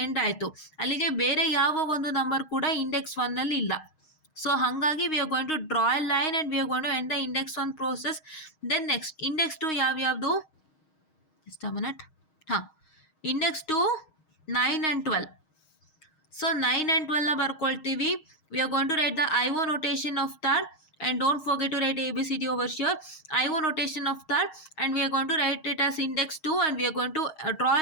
end ಆಯಿತು, ಅಲ್ಲಿಗೆ ಬೇರೆ ಯಾವ ಒಂದು ನಂಬರ್ ಕೂಡ ಇಂಡೆಕ್ಸ್ 1ನಲ್ಲಿ ಇಲ್ಲ. ಸೊ ಹಾಗಾಗಿ we are going to draw a line and we are going to end the index 1 process. Then next index 2 ಯಾವ್ಯಾವುದು, just a minute. ಹಾಂ, ಇಂಡೆಕ್ಸ್ 2 9 and 12. ಸೊ 9 and 12ನ ಬರ್ಕೊಳ್ತೀವಿ. We are going to write the IO notation of that, and don't forget to write ABCD over here. IO notation of that, and we are going to write it as index 2, and we are going to draw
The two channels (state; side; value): late; right; 6.4 ms